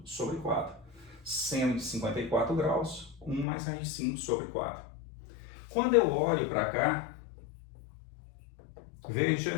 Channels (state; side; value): drops out; right; at 3.5 s